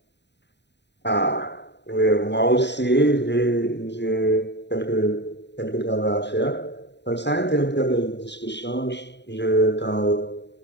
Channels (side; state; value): right; late; 0.50 ms